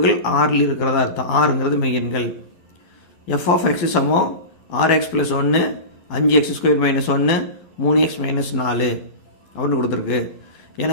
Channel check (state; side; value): late; right; 11 ms